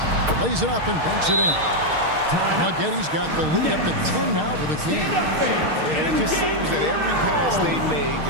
Lays it up and banks it in. Maggetti's got the lead up to 10 now for the Kings. And it just seems that every pass they make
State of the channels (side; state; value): left; late; 6.4 ms